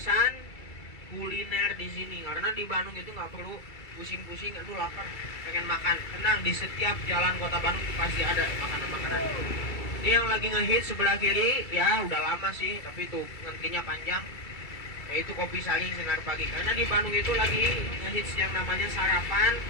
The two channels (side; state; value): right; late; 2.3 ms